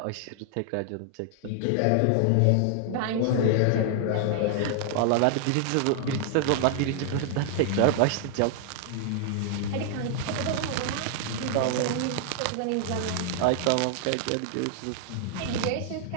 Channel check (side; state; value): both; different; correlation 0.00